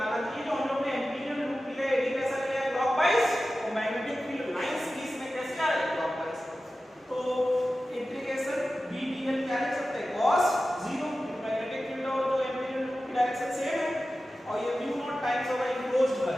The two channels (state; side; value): normal; both; correlation 0.94